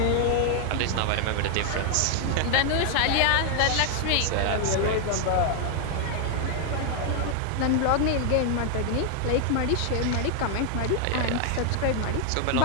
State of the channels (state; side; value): different; both; correlation 0.00